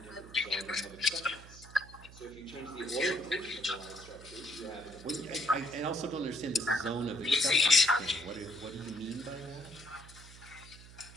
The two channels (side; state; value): right; noise; hum, 18 dB below the sound